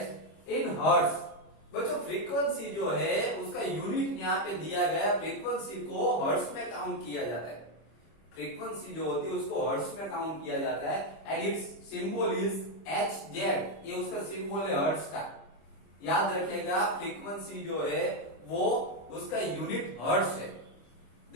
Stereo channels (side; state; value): right; late; 25 ms